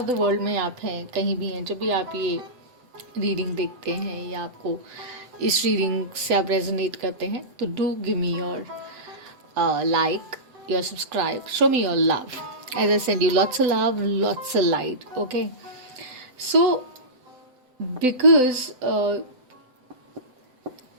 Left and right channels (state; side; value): late; left; 7.9 ms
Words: द वर्ल्ड में आप हैं, कहीं भी हैं, जब भी आप ये रीडिंग देखते हैं या आपको इस रीडिंग से आप रेजोनेट करते हैं, तो do give me your like, your subscribe, show me your love. As I send you lots of love, lots of light. Okay, so because